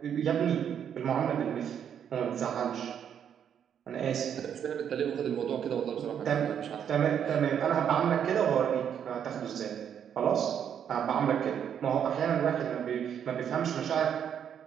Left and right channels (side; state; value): left; quieter; 8.6 dB